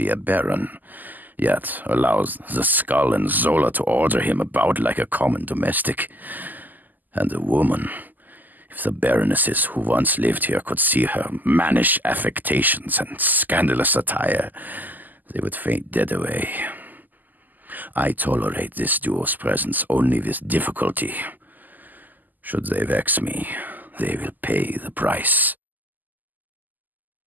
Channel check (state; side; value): late; left; 0.084 ms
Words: a baron, yet allows the Skull and Zola to order him about like a common domestic. And a woman. If the baronesses who once lived here could see her mannish affectations and scandalous attire, they would faint dead away. I tolerate this duo's presence only with difficulty. Should they vex me, they will pay the price.